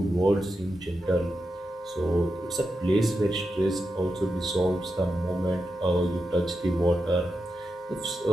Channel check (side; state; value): both; normal; correlation 0.88